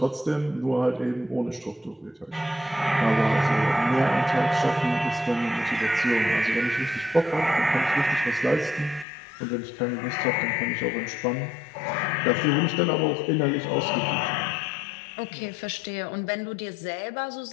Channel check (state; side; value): drops out; right; at 9.1 s